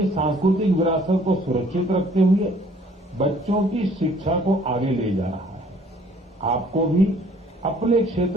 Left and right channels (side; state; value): both; normal; correlation 0.58